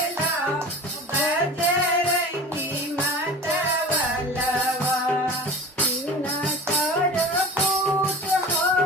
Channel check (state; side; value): normal; both; correlation 0.36